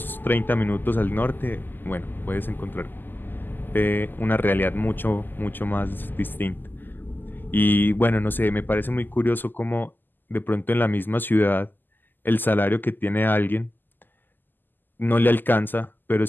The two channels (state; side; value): late; right; 0.090 ms